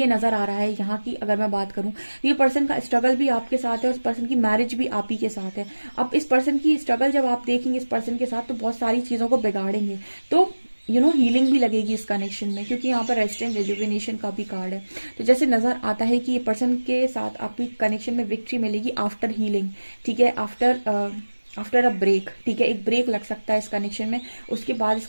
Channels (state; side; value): inverted; both; correlation -1.00